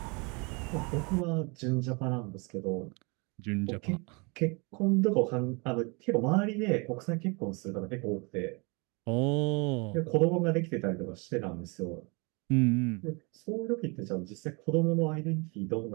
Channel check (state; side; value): quieter; left; 30.2 dB